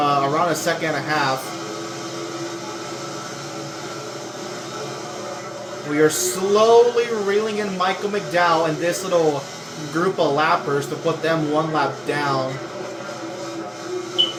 a second and a half. We are slowly reeling in Michael McDowell and this little group of lappers to put them one lap down.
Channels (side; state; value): both; identical; correlation 1.00